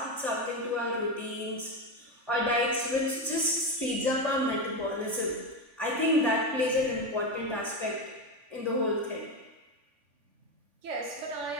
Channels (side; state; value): left; late; 3.5 ms